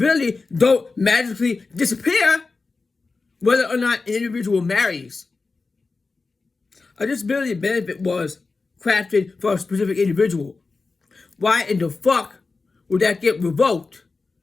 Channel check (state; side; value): quieter; right; 4.0 dB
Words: don't magically disappear whether or not an individual marries. A disability benefit was crafted for a specific individual. Why in the fuck would that get revoked